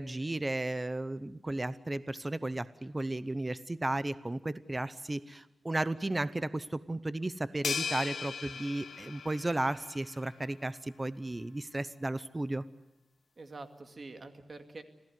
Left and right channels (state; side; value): normal; both; correlation 0.97